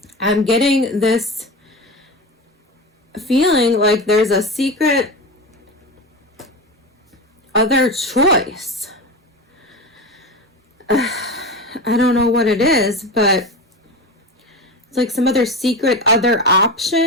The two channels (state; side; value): normal; both; correlation 0.24